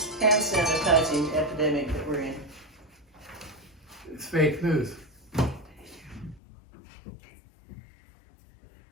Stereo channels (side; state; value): right; drops out; at 6.4 s